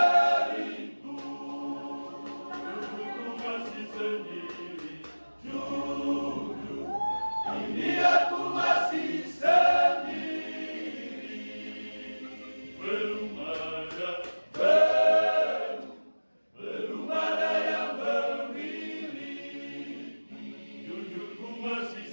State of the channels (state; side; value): inverted; both; correlation -1.00